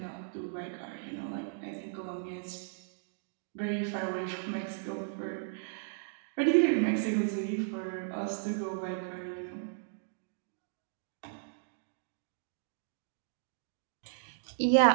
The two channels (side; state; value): left; silent; digital silence